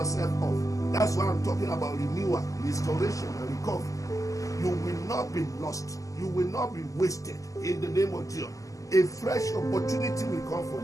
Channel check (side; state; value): right; late; 0.16 ms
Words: off. That's why I'm talking about renewal, restoration, and recovery. You will not be lost. You will not be wasted in the name of Jesus. A fresh opportunity will come for